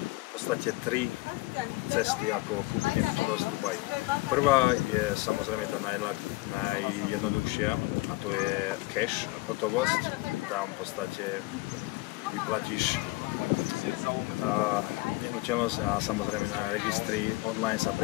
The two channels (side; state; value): right; quieter; 21.7 dB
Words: podstate tri cesty, ako kúpiť nehnuteľnosť v Dubaji. Prvá je samozrejme tá najjednoduchšia a to je cash, hotovosť. Tam v podstate vyplatíš nehnuteľnosť a samozrejme na registri online sa